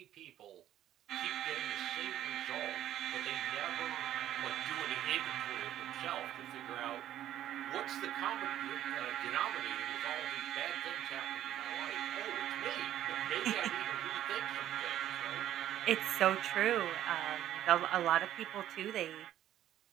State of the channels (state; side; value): quieter; left; 12.1 dB